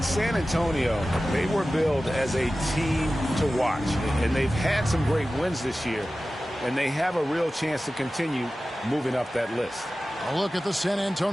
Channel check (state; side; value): normal; both; correlation 0.95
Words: San Antonio, they were billed as a team to watch, and they've had some great wins this year, and they have a real chance to continue moving up that list. A look at the San